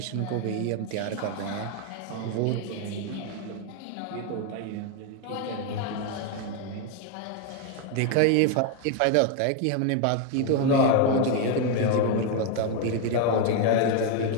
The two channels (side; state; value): both; different; correlation 0.01